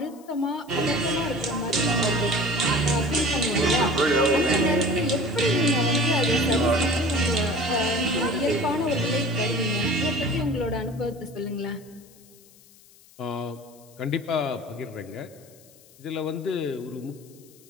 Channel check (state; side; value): noise; left; hiss, 26 dB below the sound